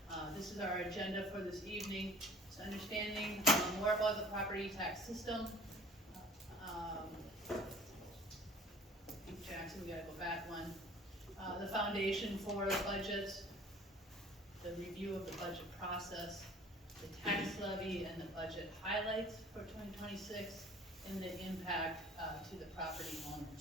This is our agenda for this evening. It's understanding more about the property tax system. Jackson, we gotta go back one. The foundation for the budget, the review of the budget process, the tax levy and the budget highlights for 2026, and the impact to the property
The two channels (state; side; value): normal; both; correlation 0.49